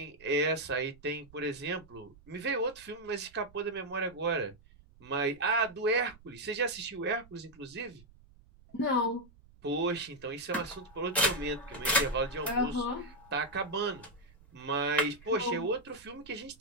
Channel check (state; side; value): noise; right; rumble, 25 dB below the sound